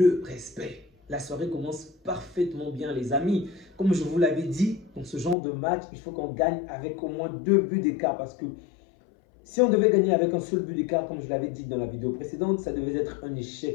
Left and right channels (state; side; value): drops out; right; at 5.4 s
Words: respect. La soirée commence parfaitement bien, les amis. Comme je vous l'avais dit, dans ce genre de match, il faut qu'on gagne avec au moins 2 buts d'écart. Parce que si on devait gagner avec un seul but d'écart, comme je l'avais dit dans la vidéo précédente, ça devait être un